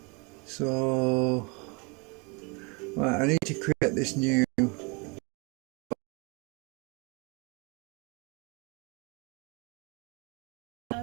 So right, I need to create this new.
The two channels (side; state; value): left; quieter; 30.7 dB